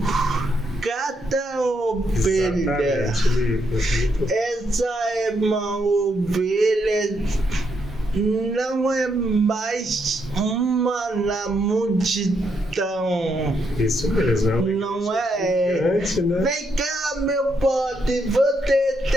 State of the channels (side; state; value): both; normal; correlation 0.78